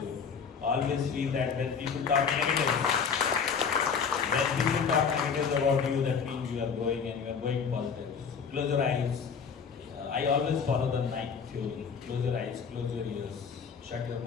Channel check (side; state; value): right; quieter; 6.2 dB